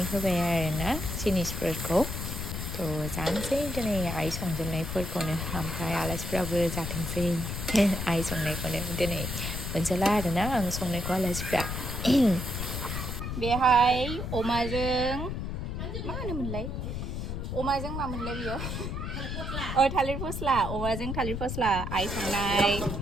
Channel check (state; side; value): noise; left; rumble, 4 dB below the sound